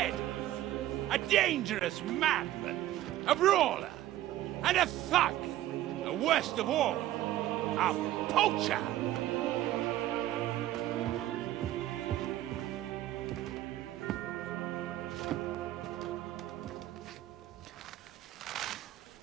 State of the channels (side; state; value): left; quieter; 14.0 dB